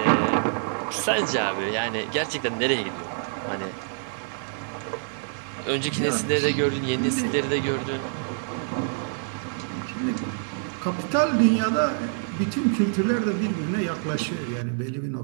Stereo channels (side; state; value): left; silent; 61 dB below the other